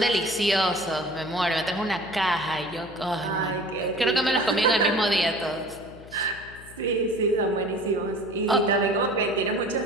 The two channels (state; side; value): noise; left; hum, 19 dB below the sound